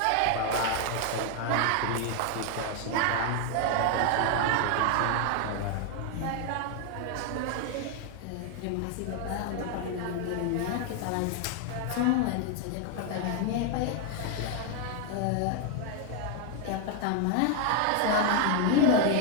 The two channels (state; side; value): different; both; correlation 0.00